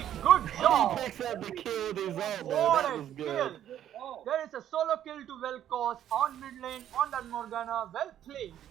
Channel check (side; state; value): left; quieter; 11.0 dB